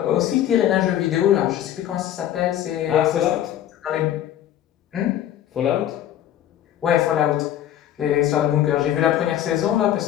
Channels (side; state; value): right; quieter; 11.5 dB